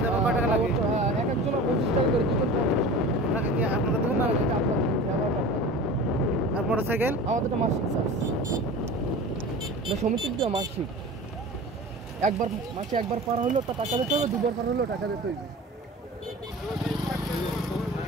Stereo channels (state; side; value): normal; both; correlation 0.36